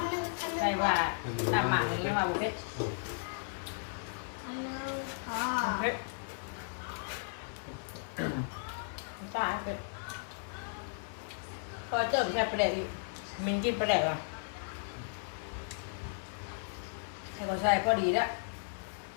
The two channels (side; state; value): right; silent; 54 dB below the other